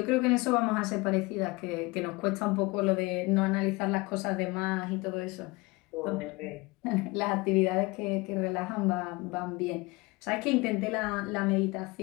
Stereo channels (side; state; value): right; quieter; 24.1 dB